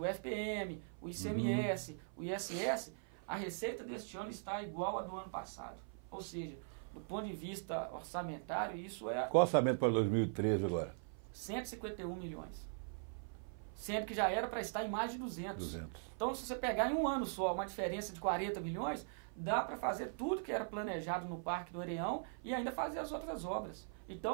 FPM, o ICMS, o ISS, a receita deste ano está igual à do ano passado. Ou seja, do ponto de vista orçamentário, isso é... Qual orçamento para 2013 agora? 151 milhões. Sendo que já era para estar em mais de 200. Então, se você pegar em um ano só uma diferença de 40 milhões, dá para fazer tudo que era planejado no Parque do Areião e ainda fazer as outras obras.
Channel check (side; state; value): left; silent; 51 dB below the other